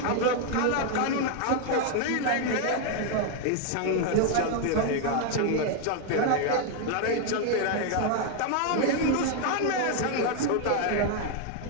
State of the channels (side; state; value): both; different; correlation 0.00